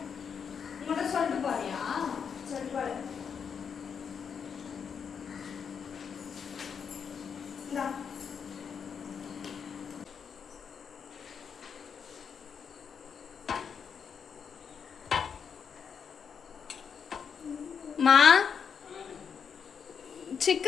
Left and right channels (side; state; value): right; quieter; 6.8 dB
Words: உங்கள்கிட்ட சொல்லிட்டு போறியா? சொல்லிட்டு போடு. இந்தா மா,